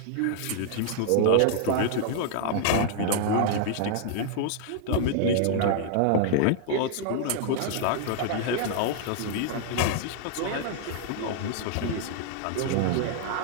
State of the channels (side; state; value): both; different; correlation 0.00